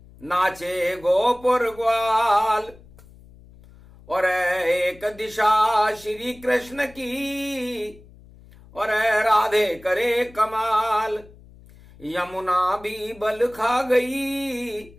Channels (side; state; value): left; noise; hum, 23 dB below the sound